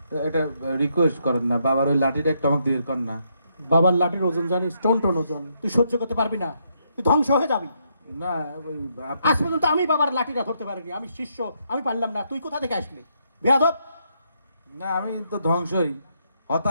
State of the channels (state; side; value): inverted; both; correlation -0.76